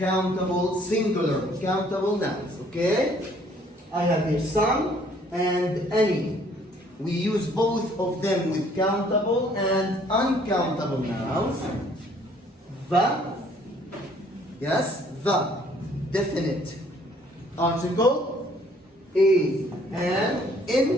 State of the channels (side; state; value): both; normal; correlation 0.61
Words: singular, countable nouns, okay? I have here some and any. We use both of them with countable and uncountable nouns. The, yes, the, definite article, a, and